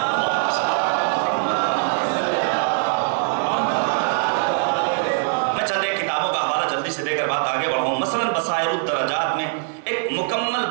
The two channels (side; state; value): left; silent; digital silence